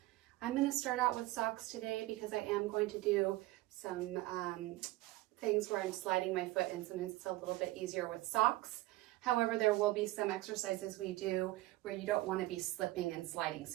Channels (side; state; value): left; quieter; 18.5 dB